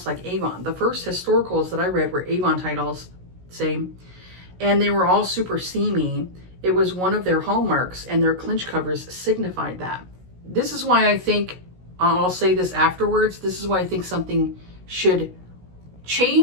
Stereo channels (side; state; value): left; late; 16 ms